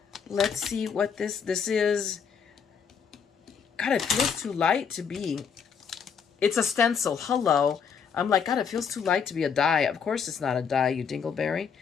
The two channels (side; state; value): right; quieter; 6.6 dB